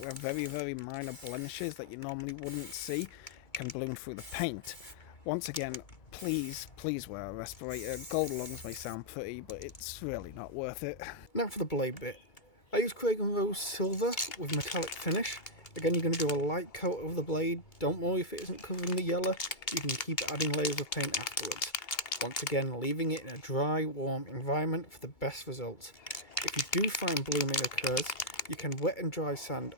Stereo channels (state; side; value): late; right; 2.2 ms